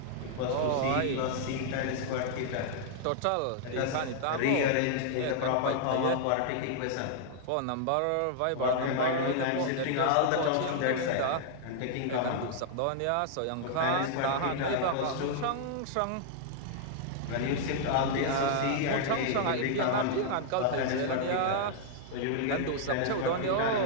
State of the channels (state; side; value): different; both; correlation -0.01